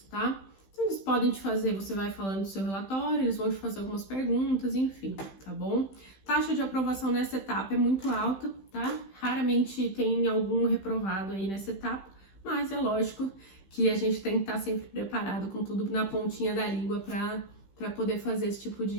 tá? Eles podem te fazer, você vai falando do seu relatório, eles vão te fazer algumas perguntas, enfim, tá bom? Taxa de aprovação nessa etapa é muito alta, tá? Raramente tem algum reprovado aí nessa etapa, mas é lógico que a gente tem que estar sempre preparado com tudo na pontinha da língua para poder fazer esse tipo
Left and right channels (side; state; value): right; late; 15 ms